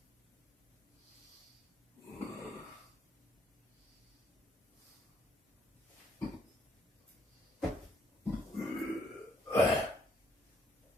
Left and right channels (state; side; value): normal; both; correlation 0.69